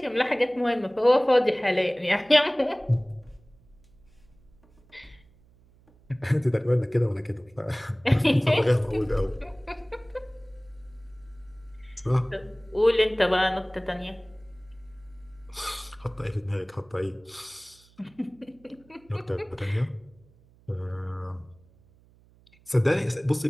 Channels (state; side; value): noise; right; hum, 29 dB below the sound